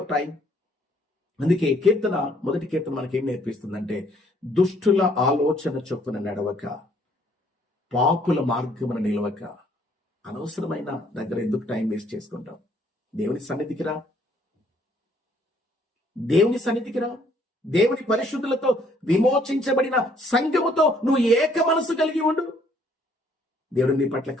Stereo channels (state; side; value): normal; both; correlation 0.64